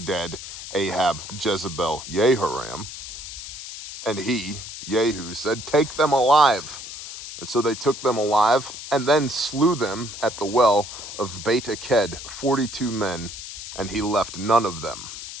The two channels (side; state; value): left; noise; hiss, 11 dB below the sound